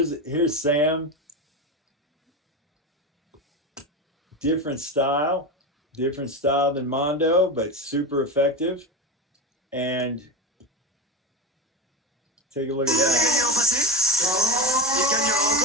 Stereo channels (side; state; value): both; normal; correlation 0.21